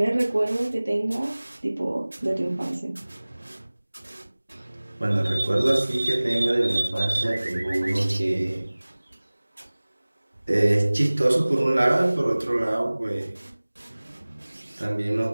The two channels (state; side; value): inverted; both; correlation -1.00